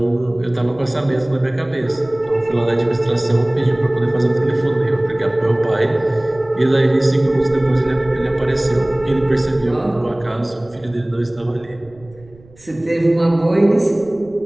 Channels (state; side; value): noise; right; rumble, 26 dB below the sound